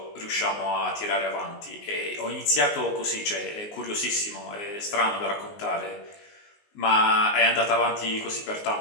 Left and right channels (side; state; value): right; late; 19 ms